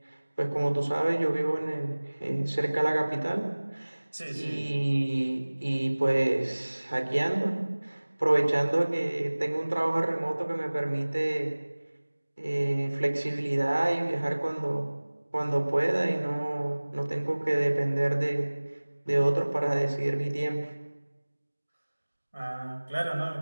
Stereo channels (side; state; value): both; inverted; correlation -1.00